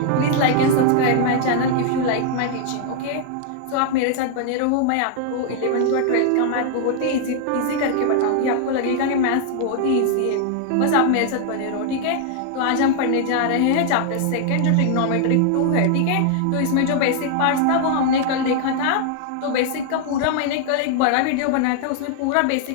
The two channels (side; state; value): both; different; correlation 0.00